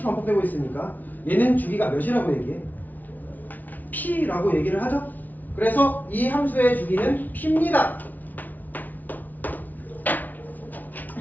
있으니까 얘는 주기가 몇이라고 얘기해? P라고 얘기를 하죠. 그래서 이 함수의 주기는 P입니다.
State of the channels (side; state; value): right; late; 0.080 ms